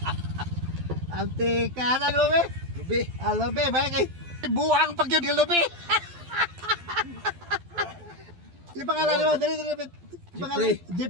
Antika na lubi. Lubi. Lubi, ba kay buang pag yun yung lubi. Yung pangalan mo, dali. Jeffrey.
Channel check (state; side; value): late; left; 12 ms